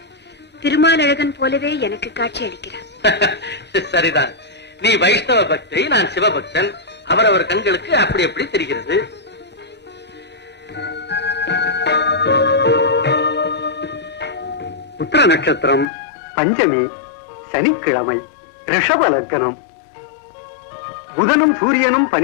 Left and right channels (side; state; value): right; drops out; at 15.9 s